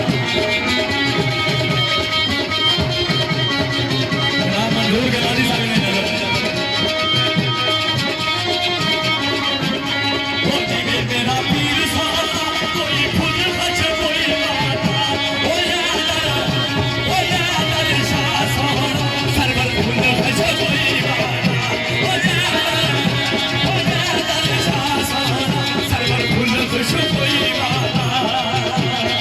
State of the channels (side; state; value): both; identical; correlation 1.00